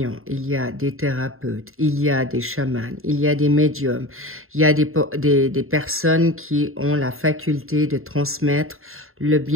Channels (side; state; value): left; late; 0.61 ms